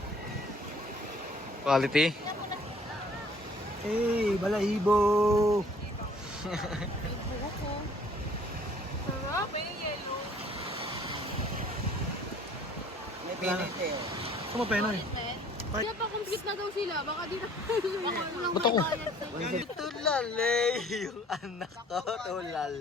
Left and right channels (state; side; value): normal; both; correlation 0.55